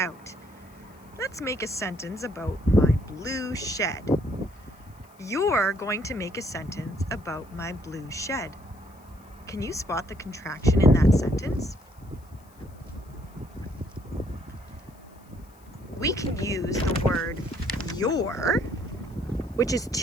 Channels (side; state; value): left; noise; hiss, 29 dB below the sound